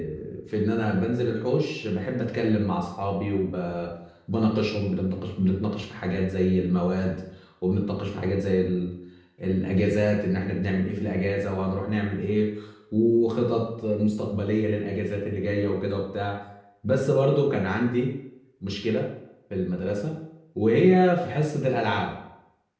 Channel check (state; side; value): identical; both; correlation 1.00